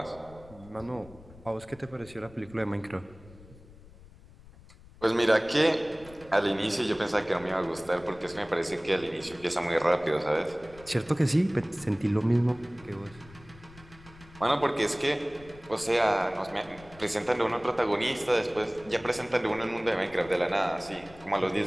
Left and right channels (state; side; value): noise; left; rumble, 21 dB below the sound